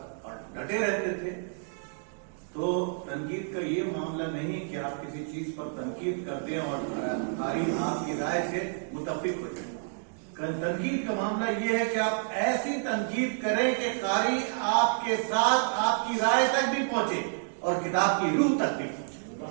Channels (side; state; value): left; silent; digital silence